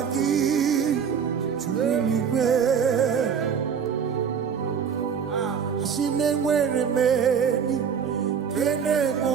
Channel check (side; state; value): left; quieter; 7.0 dB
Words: gị juru eluigwe. Si na-enwere meni kene